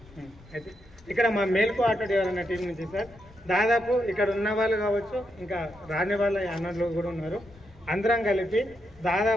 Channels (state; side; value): noise; left; rumble, 25 dB below the sound